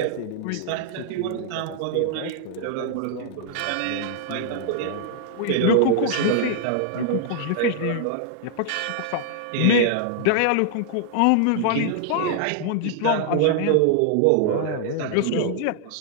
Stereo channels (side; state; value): both; different; correlation -0.01